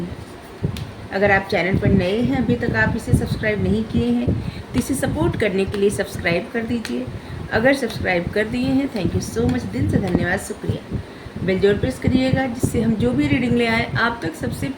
अगर आप चैनल पर नए हैं, अभी तक आप इसे सब्सक्राइब नहीं किए हैं, तो इसे सपोर्ट करने के लिए सब्सक्राइब कर दीजिए। अगर सब्सक्राइब कर दिए हैं, थैंक यू सो मच, दिल से धन्यवाद, शुक्रिया। बेल जरूर प्रेस करिएगा, जिससे हम जो भी रीडिंग ले आए आप तक सबसे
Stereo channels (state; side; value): identical; both; correlation 1.00